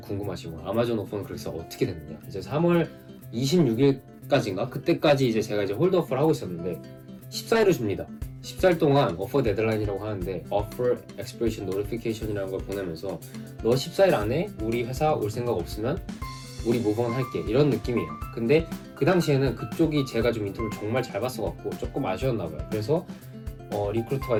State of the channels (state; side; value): identical; both; correlation 1.00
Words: 거 아마존 오퍼는 그래서 어떻게 됐느냐. 이제 3월 26일까지인가 그때까지 이제 제가 이제 홀드오퍼를 하고 있었는데 14일을 줍니다. 14일 동안 오퍼 데드라인이라고 하는데 Offer Expiration Notification이라는 걸 보내면서 너 14일 안에 우리 회사 올 생각 없으면 우리 모브온 할게 이런 느낌이에요. 근데 그 당시에는 그쪽이 제가 좀 인터뷰를 정말 잘 봤어갖고 조금 아쉬웠나 봐요. 그래서 리크루터가